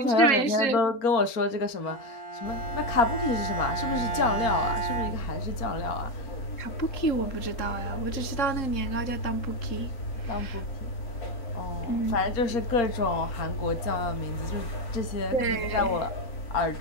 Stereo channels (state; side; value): late; right; 4.3 ms